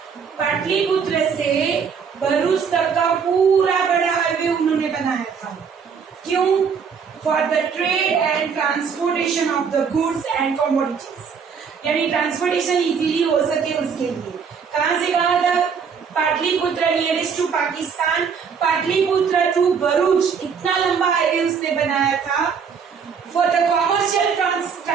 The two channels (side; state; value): left; quieter; 6.4 dB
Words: Pataliputra से भरूच तक का पूरा बड़ा हाईवे उन्होंने बनाया था। क्यों? For the trade and transportation of the goods and commodities, यानी ट्रांसपोर्टेशन इजीली हो सके उसके लिए। कहां से कहां तक? Pataliputra nearest to Pakistan, Pataliputra to Bharuch, इतना लंबा हाईवे उसने बनाया था। For the commercial